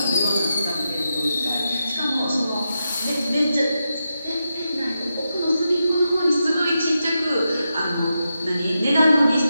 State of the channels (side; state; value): both; inverted; correlation -0.87